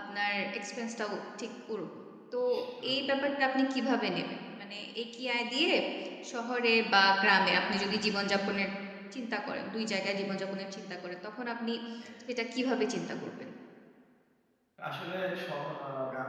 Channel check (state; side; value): identical; both; correlation 1.00